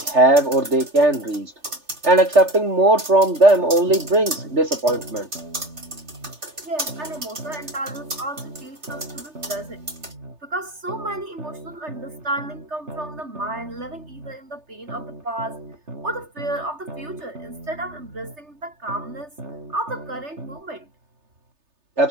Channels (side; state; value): left; late; 3.3 ms